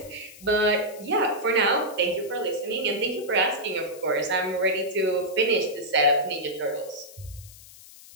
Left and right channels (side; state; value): left; noise; hiss, 19 dB below the sound